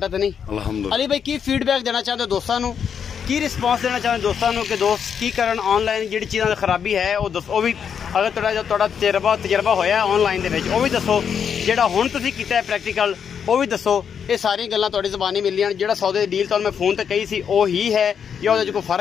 ਤਾਂ ਨਹੀਂ? ਅਲਹਮਦੁਲਿਲਾ। ਅਲੀ ਭਾਈ ਕੀ ਫੀਡਬੈਕ ਦੇਣਾ ਚਾਹੁੰਦੇ ਹੋ ਦੋਸਤਾਂ ਨੂੰ ਕੀ ਰਿਸਪੌਂਸ ਦੇਣਾ ਚਾਹੁੰਦੇ ਦੋਸਤਾਂ ਨੂੰ ਕਿ ਦੋਸਤ ਕੀ ਕਰਨ ਆਨਲਾਈਨ ਜਿਹੜੀ ਚੀਜ਼ਾਂ ਦੀ ਖਰਾਬੀ ਹੈ ਉਹ ਦੱਸੋ ਉਹ ਵੀ ਅਗਰ ਤੁਹਾਡਾ ਤਜਰਬਾ ਹੋਇਆ ਆਨਲਾਈਨ ਦੇ ਵਿੱਚ ਉਹ ਵੀ ਦੱਸੋ ਜਿਹੜਾ ਹੁਣ ਤੁਸੀਂ ਕੀਤਾ ਹੈ ਪ੍ਰੈਕਟੀਕਲ ਉਹ ਵੀ ਦੱਸੋ। ਇਹ ਸਾਰੀਆਂ ਗੱਲਾਂ ਤੁਹਾਡੀ ਜ਼ਬਾਨੀ ਮਿਲੀਆਂ ਜਿਹੜਾ ਸੌਦੇ ਦੀ ਡੀਲ ਤੁਹਾਨੂੰ ਮੈਂ ਫੋਨ ਤੇ ਕਹੀ ਸੀ ਉਹ ਹੀ ਹੈ ਜਾਂ ਉਹਦੇ 'ਚ ਕੋਈ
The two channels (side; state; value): right; quieter; 7.5 dB